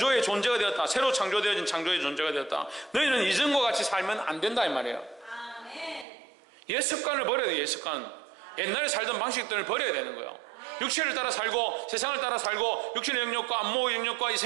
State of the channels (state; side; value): drops out; left; at 6.1 s